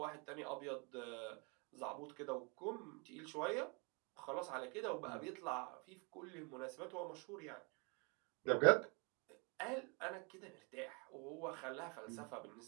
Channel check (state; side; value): quieter; left; 32.1 dB